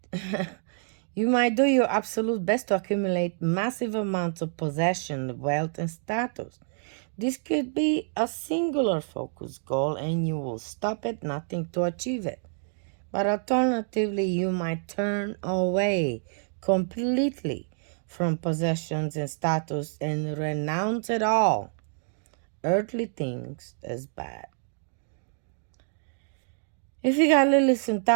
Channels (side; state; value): left; silent; digital silence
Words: do your absolute best to accumulate massive amounts of possession, wealth, and status. This could be a singular focus goal and you will stop at nothing to achieve it. But alternatively, you might turn away completely from possessions and status and renounce it all, earthly things, as bad. If you got Lilith in